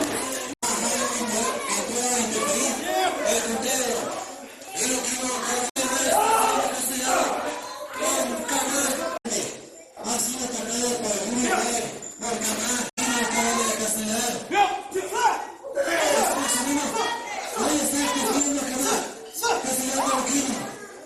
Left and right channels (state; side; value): identical; both; correlation 1.00